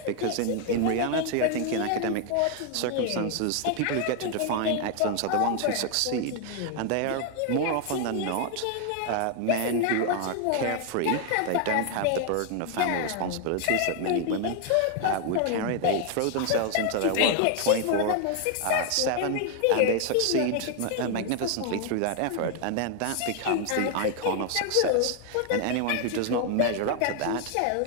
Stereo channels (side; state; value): both; different; correlation 0.00